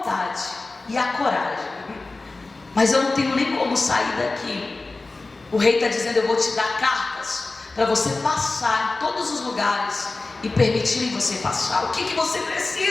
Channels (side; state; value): right; quieter; 3.4 dB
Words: e a coragem, mas eu não tenho nem como sair daqui. O rei está dizendo: eu vou te dar cartas para você passar em todos os lugares e permitirem você passar. O que você